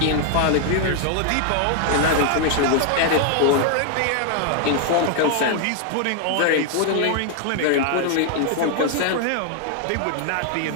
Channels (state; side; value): different; both; correlation 0.00